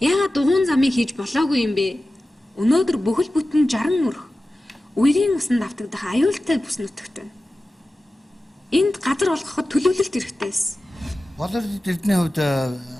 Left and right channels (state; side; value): normal; both; correlation 0.95